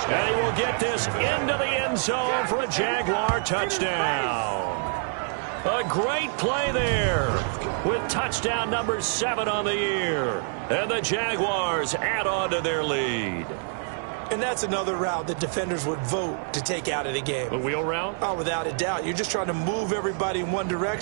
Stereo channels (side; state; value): left; silent; 61 dB below the other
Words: And he will get this into the end zone for a Jaguar touchdown. A great play there with touchdown number 7 on the year. And the Jaguars add on to their lead. And that's another route that defenders would vote to take out of the game. A wheel route? Oh, without a doubt. You're just trying to move everybody in one